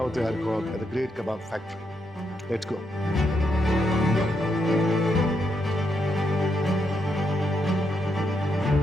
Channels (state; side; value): normal; both; correlation 0.80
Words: Arcot at the Great Kabab Factory. Let's go.